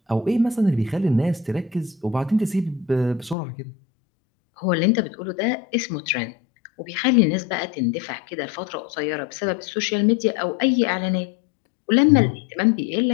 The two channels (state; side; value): drops out; right; at 3.4 s